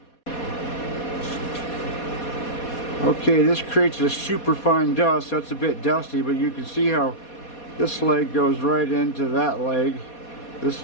Okay, this creates a super fine dust. That's a bit dusty, but you can see how this leg goes right into that leg. This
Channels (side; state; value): right; late; 4.2 ms